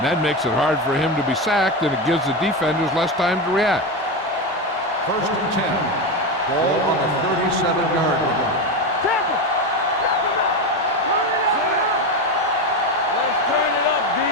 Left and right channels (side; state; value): both; normal; correlation 0.16